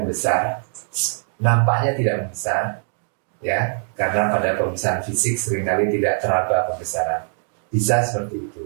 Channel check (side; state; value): left; silent; 62 dB below the other